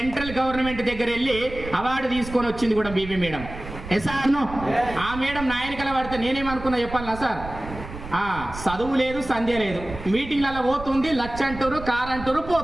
గవర్నమెంట్ దగ్గర వెళ్ళి అవార్డు తీసుకొని వచ్చింది కూడా బీబీ మేడం. ఎస్ఆర్ను. ఆ మేడం నాయనకల పడితే నేనేమనుకున్నా చెప్పాలనా సార్? చదువు లేదు, సంధ్య లేదు, మీటింగ్లలో పోతుంది, లక్ష అంటారు, కార్ అంటారు,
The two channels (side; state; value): right; noise; rumble, 12 dB below the sound